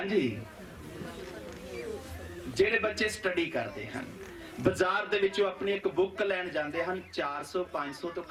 जी, जेड़े बच्चे स्टडी करते हैं बाजार दे विचों अपनी एक बुक लैन जाते हैं, 400-500 तो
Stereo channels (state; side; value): identical; both; correlation 1.00